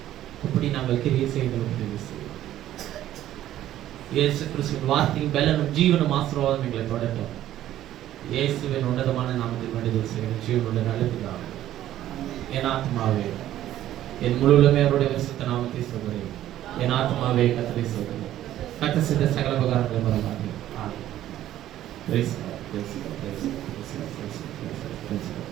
அப்படி நாங்கள் கிரியை செய்ய எங்களுக்கு உதவி செய்யும். இயேசு கிறிஸ்துவின் வார்த்தையும் பலனும் ஜீவனும் ஆசீர்வாதம் எங்களை தொடரட்டும். இயேசுவின் உன்னதமான நாமத்தில் வேண்டுதல் செய்கிறேன் ஜீவனுள்ள நல்லதுதான். என் ஆத்மாவே என் முழுவதுமே அவருடைய பரிசுத்த நாமத்தை சொல்கிறேன். என் ஆத்மாவே கர்த்தரை சொல்கிறேன். கர்த்தர் செய்த சகல உபகாரங்களை மறவாதே.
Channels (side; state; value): left; quieter; 12.9 dB